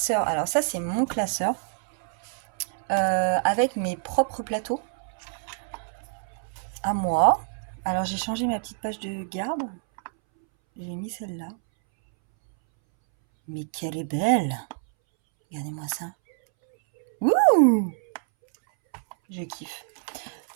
Alors ça, c'est mon classeur avec mes propres plateaux à moi. Alors, j'ai changé ma petite page de garde. J'ai mis celle-là. Mais qu'elle est belle! Regardez-moi ça. Ouh! Je kiffe.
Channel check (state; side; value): silent; left; 61 dB below the other